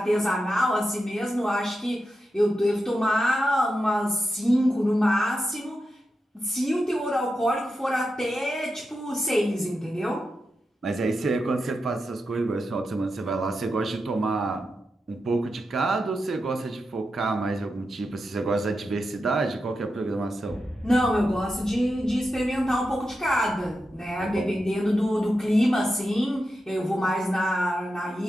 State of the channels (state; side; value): normal; both; correlation 0.89